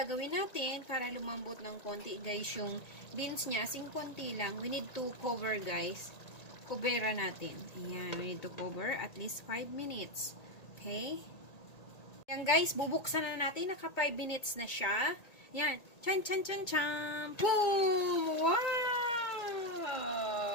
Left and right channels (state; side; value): late; right; 1.8 ms